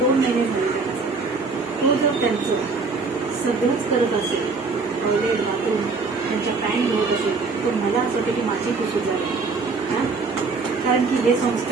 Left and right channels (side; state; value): left; quieter; 4.3 dB